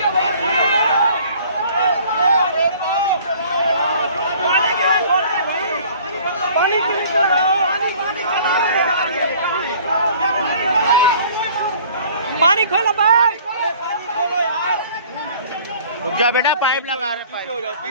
पानी खोलो भाई। रुक जा बेटा, पाइप लगा रहे। पीछे हो जाओ,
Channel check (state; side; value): inverted; both; correlation -0.52